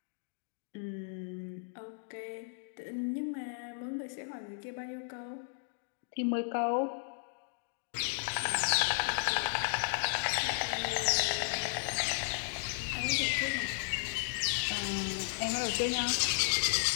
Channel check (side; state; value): right; silent; digital silence